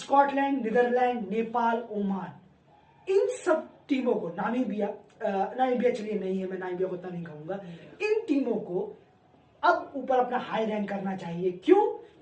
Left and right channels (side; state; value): both; identical; correlation 1.00